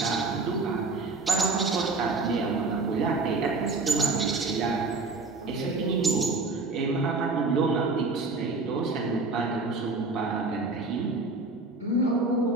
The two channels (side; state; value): left; quieter; 3.6 dB